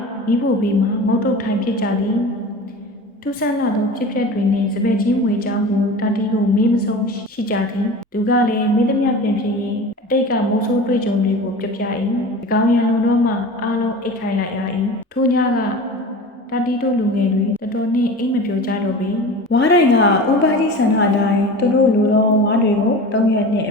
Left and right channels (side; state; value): both; normal; correlation 0.34